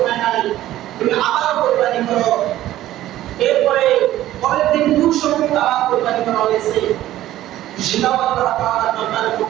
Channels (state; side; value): quieter; left; 14.1 dB